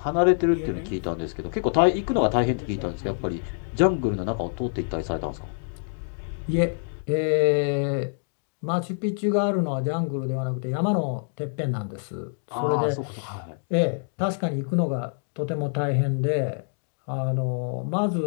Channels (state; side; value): silent; right; digital silence